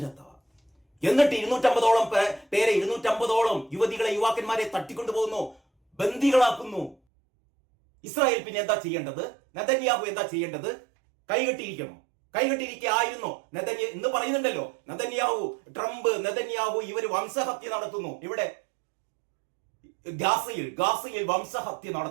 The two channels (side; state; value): left; drops out; at 7.0 s